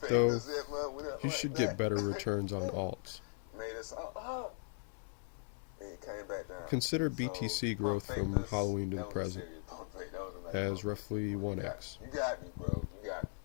Though fingers that month went up you like should that. get better returns on alts. Made us up. And it came back down. Consider So, BTC pump growth from fakers, Halloween to the that was present serious. Pump fake, that was a nice as pump roughly fake. 1x. You got me, bro. You got me.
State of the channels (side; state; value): right; silent; 52 dB below the other